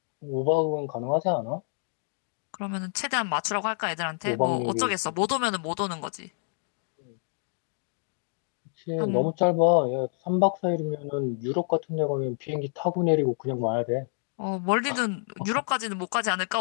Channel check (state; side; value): silent; right; 59 dB below the other